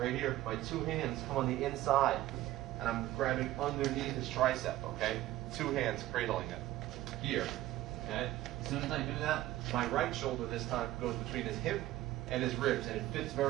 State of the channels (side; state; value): left; quieter; 15.5 dB